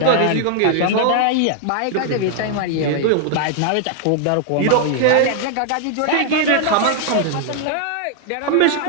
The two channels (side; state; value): both; different; correlation 0.00